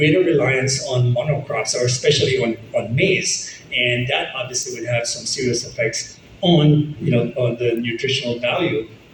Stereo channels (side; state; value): both; identical; correlation 1.00